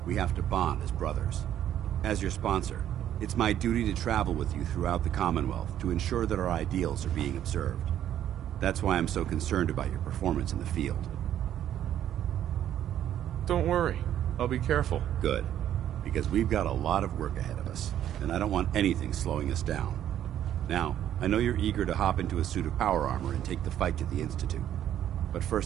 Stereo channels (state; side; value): quieter; left; 11.0 dB